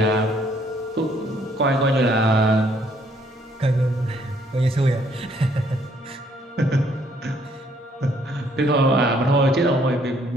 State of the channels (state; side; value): normal; both; correlation 0.66